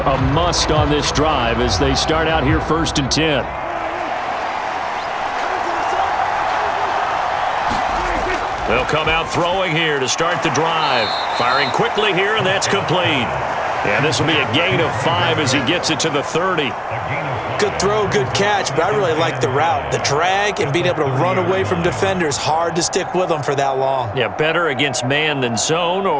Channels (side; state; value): both; identical; correlation 1.00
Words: must on this drive as they start out here 1st and 10. They'll come out throwing here to start the drive. Firing quickly here, and that's complete. And this will be a gain of 5 as he gets it to the 30. Good throw, good catch, but I really like the route. The drag and being able to run away from defenders, hard to stick with them for that long. Yeah, better against man than zone,